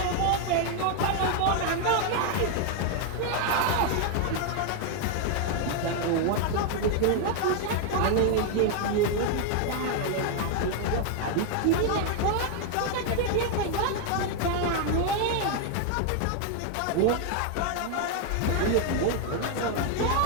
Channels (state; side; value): different; both; correlation 0.00